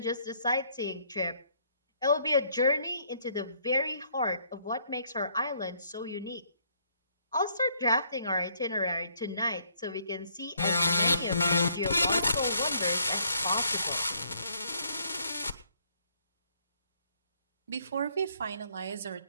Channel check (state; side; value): inverted; both; correlation -0.67